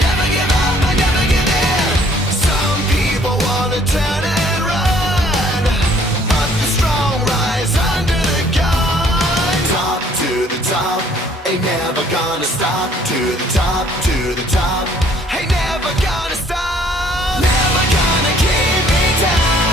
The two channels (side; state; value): both; normal; correlation 0.60